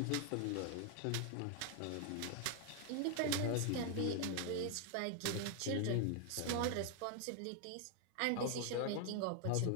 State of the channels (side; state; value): both; different; correlation 0.00